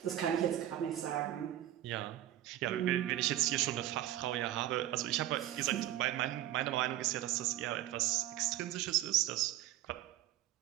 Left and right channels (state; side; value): quieter; left; 13.4 dB